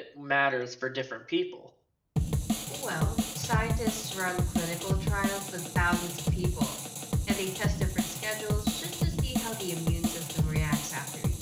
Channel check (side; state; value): both; identical; correlation 1.00